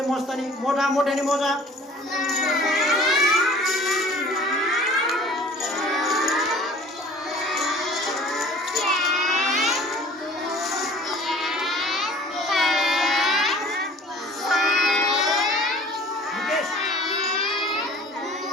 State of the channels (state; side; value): normal; both; correlation 0.48